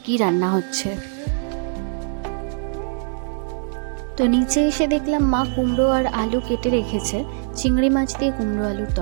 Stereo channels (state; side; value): silent; left; digital silence